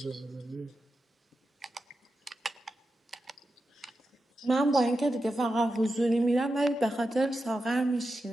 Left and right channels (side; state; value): both; normal; correlation 0.90